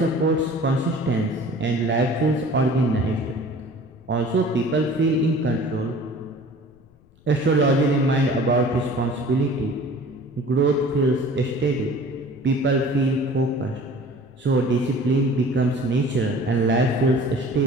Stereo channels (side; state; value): left; noise; rumble, 29 dB below the sound